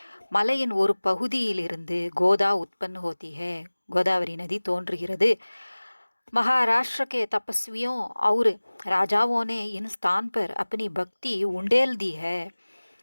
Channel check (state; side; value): inverted; both; correlation -1.00